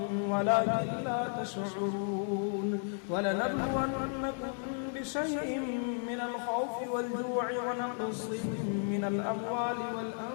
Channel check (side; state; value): right; silent; 55 dB below the other